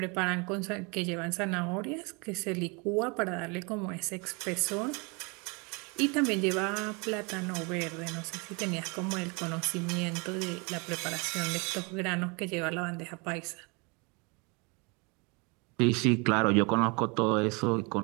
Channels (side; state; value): left; quieter; 30.4 dB